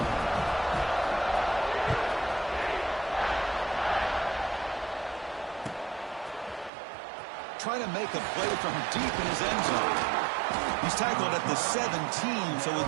Trying to make a play from deep in his end zone. He's tackled at the 17, so it would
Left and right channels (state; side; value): drops out; left; at 6.7 s